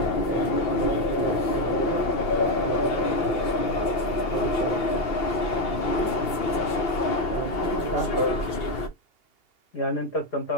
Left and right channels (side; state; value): right; late; 2.8 ms